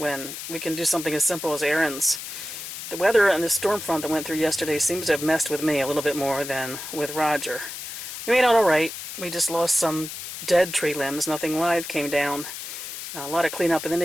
we can do something as simple as errands. The weather and the storm front that went through yesterday seems to have messed with me a little bit more than with Roger. We made out all right. We just lost some dead tree limbs. Nothing live came down. A lot of cleanup in the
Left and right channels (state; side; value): noise; left; hiss, 9 dB below the sound